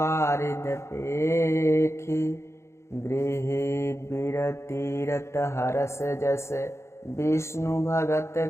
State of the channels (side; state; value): right; late; 0.13 ms